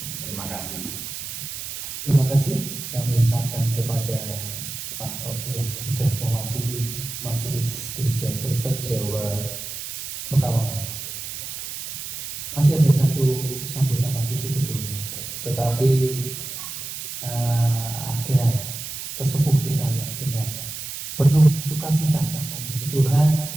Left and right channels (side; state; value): right; noise; hiss, 8 dB below the sound